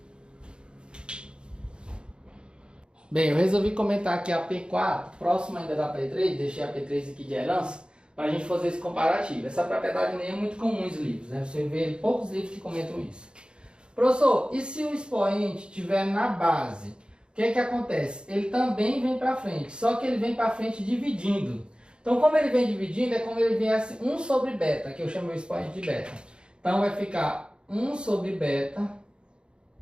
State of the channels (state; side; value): late; left; 0.053 ms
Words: Bem, eu resolvi comentar aqui a P4, próximo ainda da P3, deixei a P3 aqui de herança, para a gente fazer esse comparativo. Essa propriedade nem é muito comum nos livros, né? Você vê poucos livros que comentam isso. Professor, e se o expoente estiver na base? O que acontece? Ele também vem para frente, só que ele vem para frente dividindo. Então, como ele vem dividindo, é como ele viesse 1 sobre beta, que eu chamo o expoente de beta. Então, vai ficar 1 sobre beta